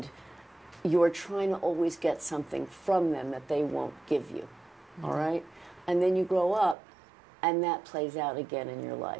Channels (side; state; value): left; drops out; at 6.8 s